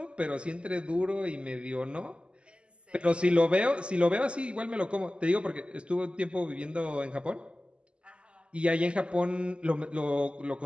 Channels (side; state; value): left; late; 0.053 ms